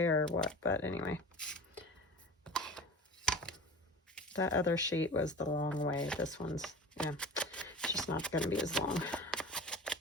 or what, but anyway. That other sheet was the long way. This one's, yeah, it's just not going to be as long.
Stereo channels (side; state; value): both; normal; correlation 0.36